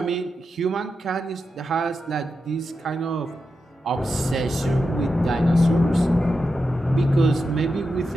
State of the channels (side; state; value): both; normal; correlation 0.88